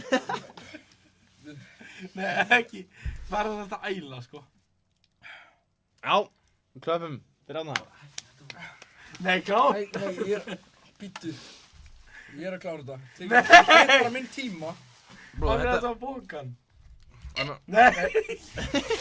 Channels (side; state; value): both; identical; correlation 1.00